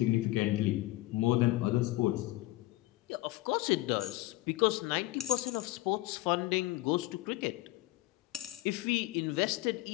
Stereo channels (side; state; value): right; quieter; 18.2 dB